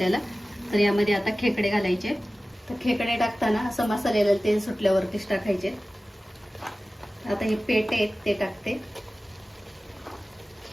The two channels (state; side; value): normal; both; correlation 0.96